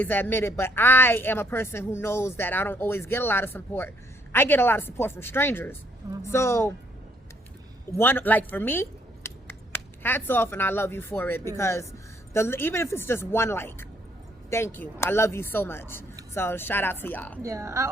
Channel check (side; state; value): both; normal; correlation 0.68